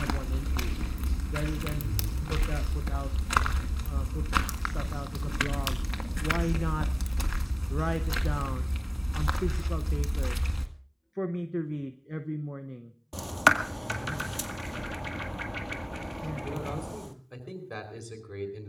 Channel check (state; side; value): identical; both; correlation 1.00